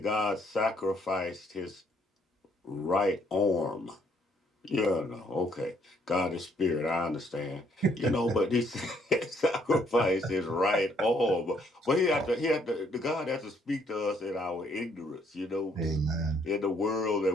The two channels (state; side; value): normal; both; correlation 0.67